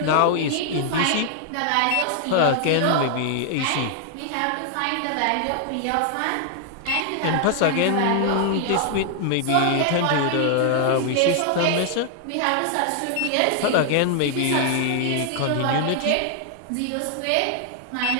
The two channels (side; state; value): both; different; correlation 0.00